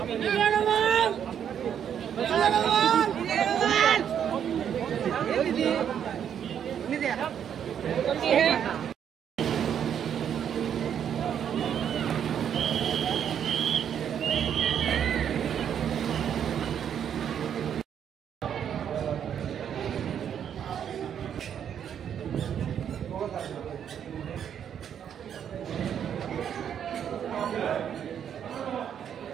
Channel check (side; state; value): left; quieter; 8.8 dB